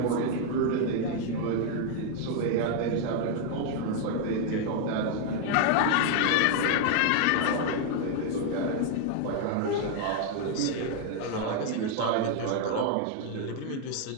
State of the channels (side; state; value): both; different; correlation 0.00